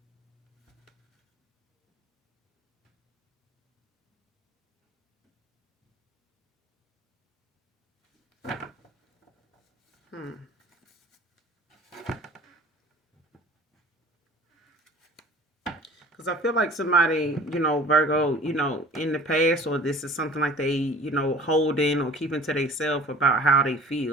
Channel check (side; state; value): both; normal; correlation 0.46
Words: Hmm. Because I feel like somebody, Virgo, in the past, or this is something like they, hold in or keeping to themselves about how they